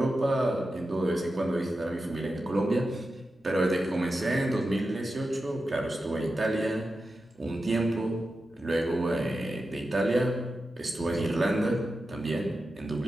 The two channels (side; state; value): both; normal; correlation 0.91